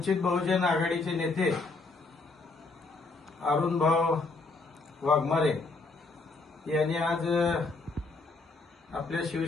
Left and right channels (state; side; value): quieter; right; 3.7 dB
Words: वंचित बहुजन आघाडीचे नेते अरुणभाऊ वाघमारे यांनी आज आपल्या